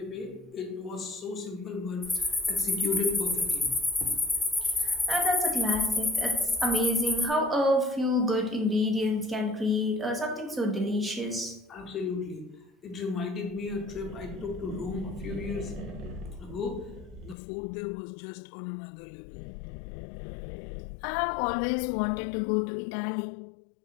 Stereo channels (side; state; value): right; drops out; at 17.4 s